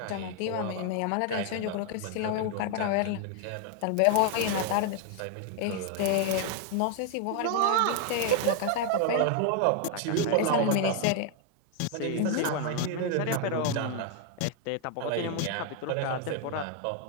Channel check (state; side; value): different; both; correlation 0.00